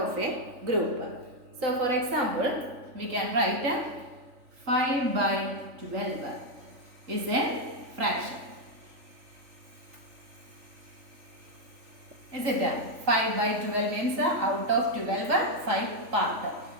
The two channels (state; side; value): late; left; 3.5 ms